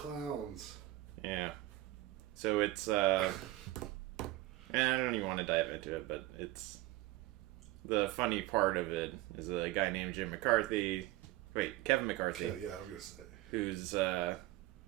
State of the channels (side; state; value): left; quieter; 17.4 dB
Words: Yeah. So it's. I don't even want to dive into it, but it's. The funny part of it is a guy named Kevin McCarthy. Yeah, I was going to say. Who's,